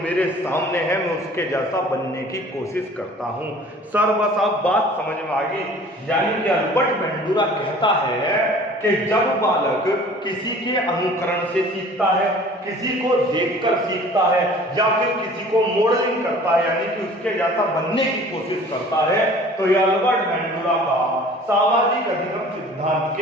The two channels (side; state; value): both; normal; correlation 0.48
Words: सामने है मैं उसके जैसा बनने की कोशिश करता हूं। सर बस आप बात समझ में आ गई। यानी कि अल्बर्ट बेंडूरा कहता है कि जब बालक किसी के अनुकरण से सीखता है, किसी को देखकर सीखता है, या फिर किसी को मॉडलिंग करता है यानी कि उसके जैसा बनने की कोशिश करता है, तो यह अल्बर्ट बेंडूरा का सामाजिक अधिगम सिद्धांत